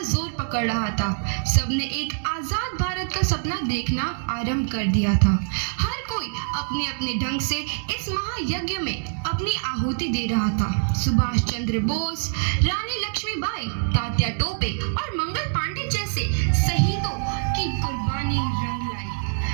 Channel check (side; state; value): left; silent; 62 dB below the other